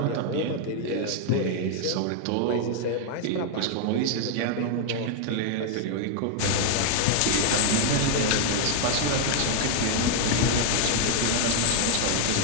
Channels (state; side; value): different; both; correlation 0.00